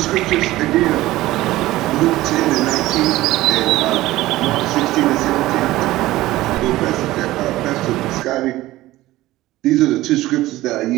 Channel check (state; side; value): quieter; left; 16.9 dB